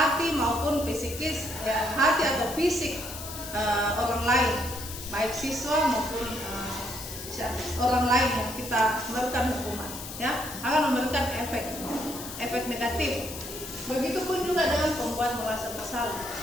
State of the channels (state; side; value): noise; left; hiss, 10 dB below the sound